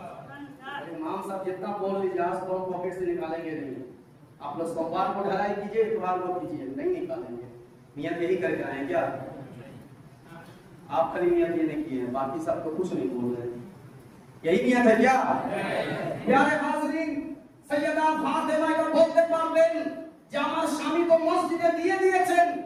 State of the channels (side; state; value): both; identical; correlation 1.00